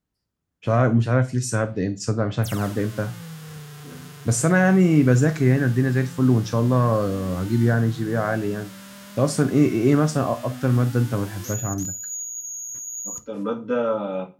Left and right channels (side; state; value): both; identical; correlation 1.00